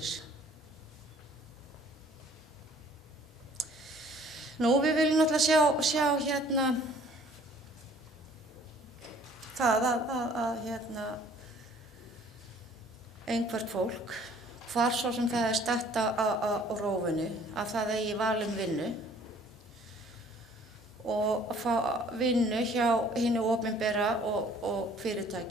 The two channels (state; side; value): normal; both; correlation 0.55